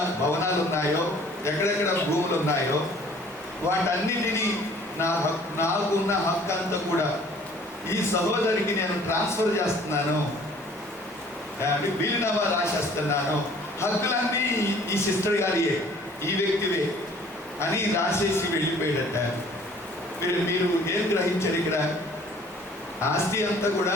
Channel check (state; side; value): normal; both; correlation 0.54